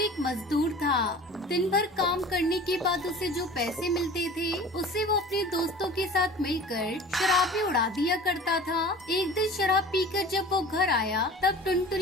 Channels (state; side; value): normal; both; correlation 0.41